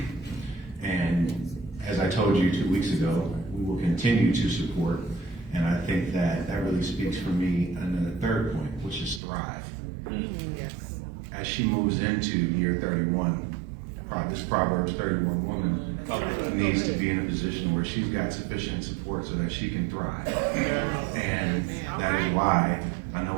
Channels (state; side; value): drops out; left; at 9.2 s